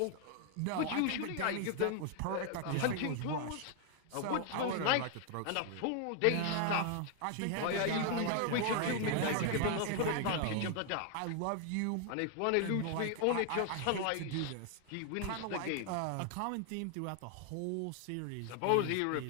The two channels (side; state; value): both; different; correlation 0.00